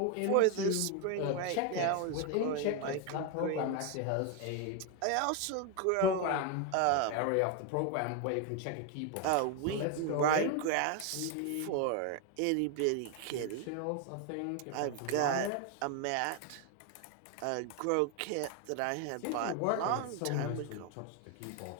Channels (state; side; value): different; both; correlation 0.01